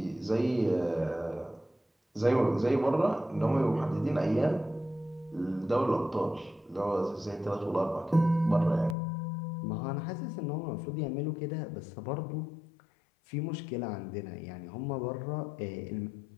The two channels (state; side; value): drops out; right; at 9.0 s